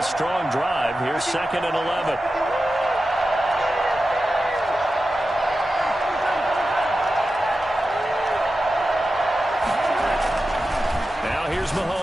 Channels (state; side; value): normal; both; correlation 0.92